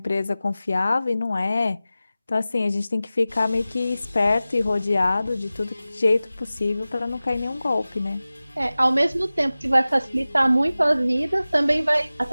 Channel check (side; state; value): both; inverted; correlation -0.97